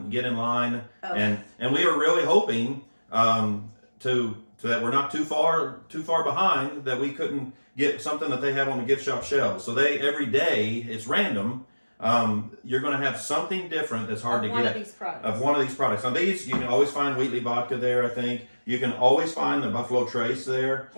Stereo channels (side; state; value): both; inverted; correlation -1.00